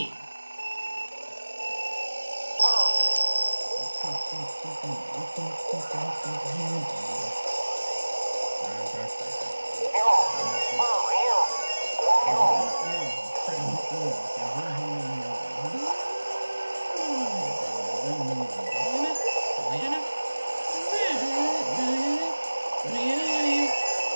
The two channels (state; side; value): inverted; both; correlation -1.00